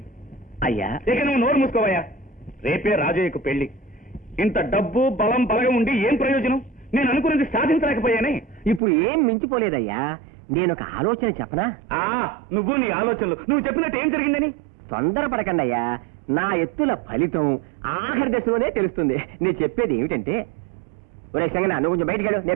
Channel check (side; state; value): left; drops out; at 8.8 s